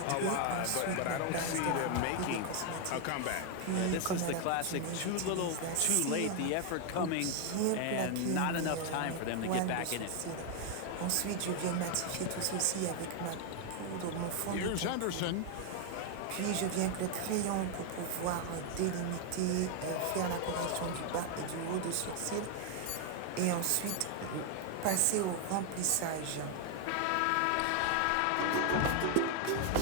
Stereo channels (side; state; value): both; different; correlation 0.01